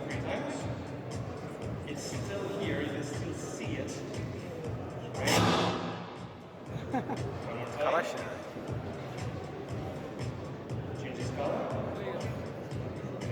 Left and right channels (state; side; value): identical; both; correlation 1.00